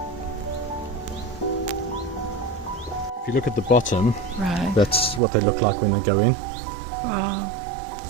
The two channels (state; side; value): drops out; left; at 5.2 s